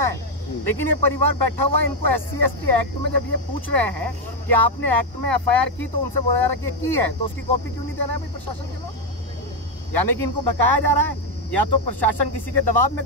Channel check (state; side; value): normal; both; correlation 0.04